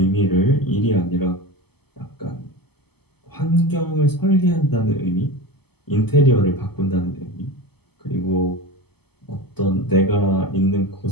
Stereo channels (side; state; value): right; late; 0.97 ms